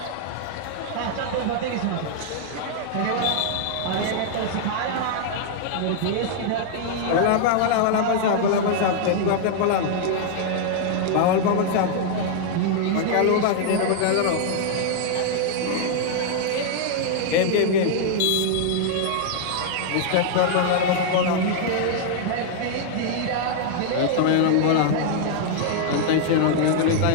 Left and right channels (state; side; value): different; both; correlation -0.01